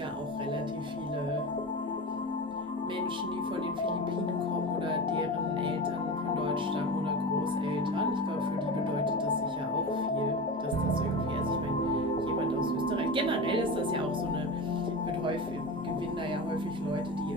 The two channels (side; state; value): both; normal; correlation 0.26